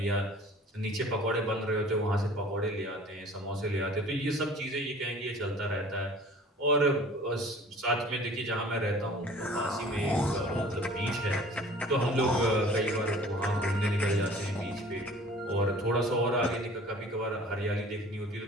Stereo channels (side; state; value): both; normal; correlation 0.48